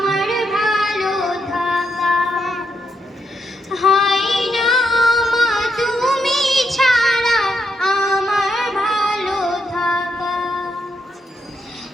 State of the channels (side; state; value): both; normal; correlation 0.80